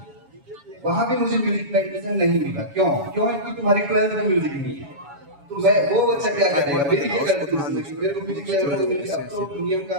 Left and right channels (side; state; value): left; late; 7.1 ms